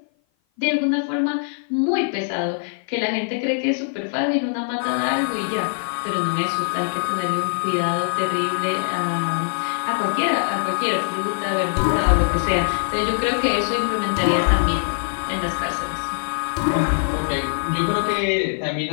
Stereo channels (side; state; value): right; silent; 56 dB below the other